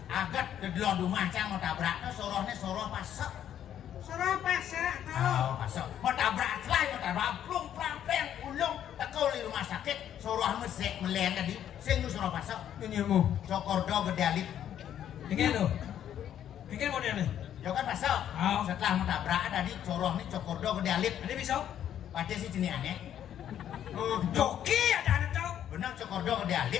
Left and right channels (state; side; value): quieter; right; 10.3 dB